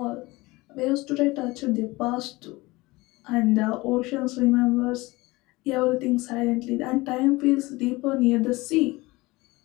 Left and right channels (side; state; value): right; quieter; 21.7 dB